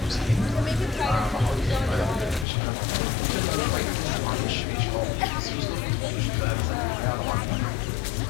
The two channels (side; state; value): right; drops out; at 2.5 s